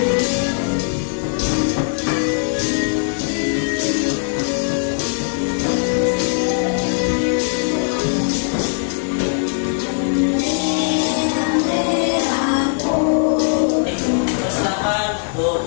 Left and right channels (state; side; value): silent; right; 66 dB below the other